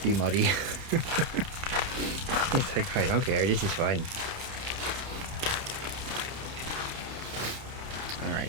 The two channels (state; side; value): late; left; 30 ms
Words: be muddy. He's like, I don't care, this is fun.